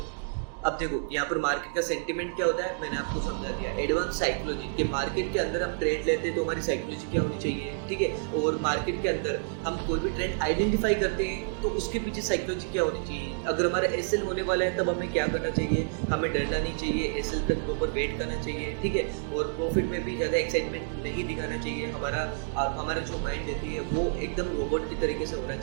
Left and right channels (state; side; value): silent; left; digital silence